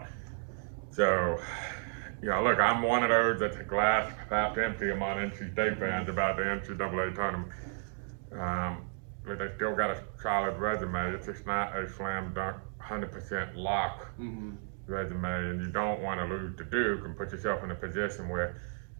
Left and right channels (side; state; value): left; silent; 56 dB below the other